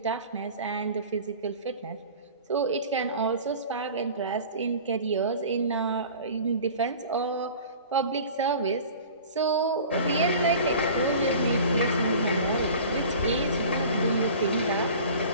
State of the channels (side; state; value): both; inverted; correlation -0.41